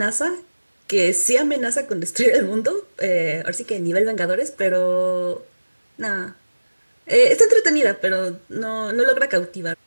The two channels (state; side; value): inverted; both; correlation -1.00